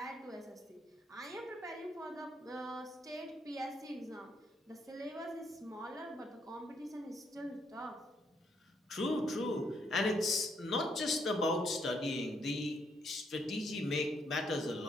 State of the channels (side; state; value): both; normal; correlation 0.73